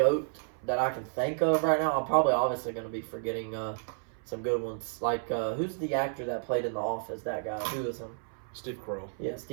that I can think of right now. I'm probably obviously going to be forgetting some good ones. Like, who's the actor that played in The Office? That guy. Who is him? Steve Carell. Yeah,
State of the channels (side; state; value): left; silent; 57 dB below the other